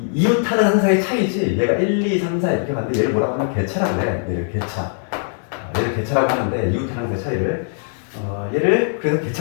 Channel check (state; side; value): silent; right; digital silence